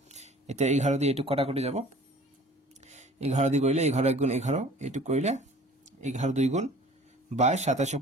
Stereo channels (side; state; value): both; normal; correlation 0.48